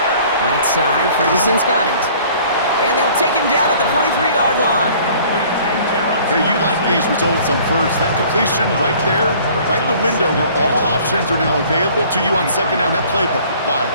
side, Ferguson's got it. And they'll take him down at the 43-yard line. Hey, you like these results on first. That completion right there, right in the window where all options are now available to you on second down. That playbook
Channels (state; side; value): inverted; both; correlation -0.52